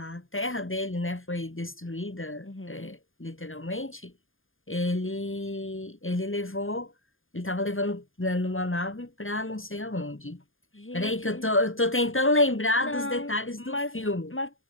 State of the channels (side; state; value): right; late; 0.59 ms